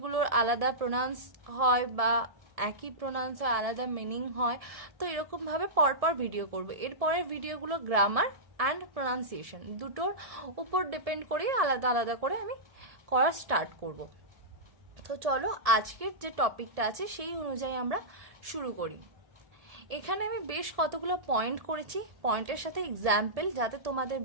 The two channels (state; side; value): late; left; 1.7 ms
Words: আলাদা প্রোনাউন্স হয় বা একই প্রোনাউন্স হয়, আলাদা মিনিং হয়, তো এরকমভাবে পরপর ভিডিও করব। এরপরের ভিডিওগুলো গ্রামার অ্যান্ড প্রোনাউন্সিয়েশন দুটোর উপর ডিপেন্ড করে আলাদা আলাদা করে আমি করা স্টার্ট করব। তো চলো আজকের যে টপিকটা আছে সেই অনুযায়ী আমরা শুরু করি। এখানে আমি বেশ কতগুলো পয়েন্ট করেছি, পয়েন্টের সাথে এক্সাম্পল, যাতে তোমাদের